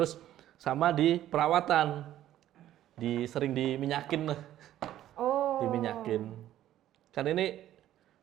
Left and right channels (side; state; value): left; quieter; 12.7 dB